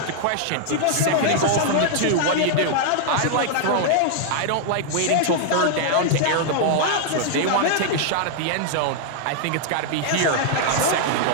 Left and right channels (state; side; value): different; both; correlation -0.01